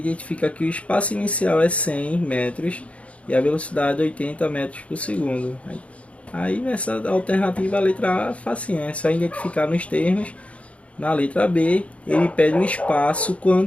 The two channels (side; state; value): right; late; 0.063 ms